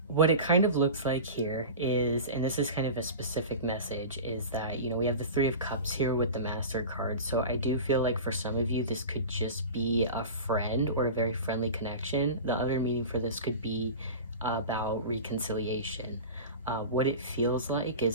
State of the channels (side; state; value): both; inverted; correlation -0.32